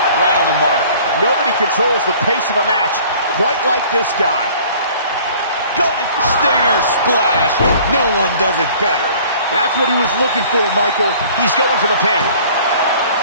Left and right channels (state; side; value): inverted; both; correlation -0.50